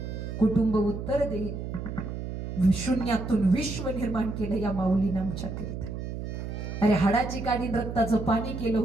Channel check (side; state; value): right; noise; hum, 6 dB below the sound